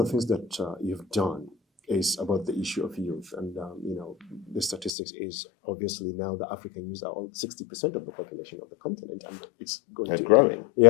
things that you've done is about the issue of youth. And, the statistics is obviously now the African youth are all 60% of the population of the continent, and it's going to growing.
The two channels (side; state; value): right; drops out; at 4.9 s